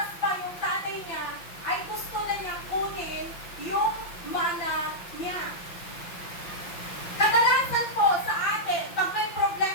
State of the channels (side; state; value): right; late; 5.8 ms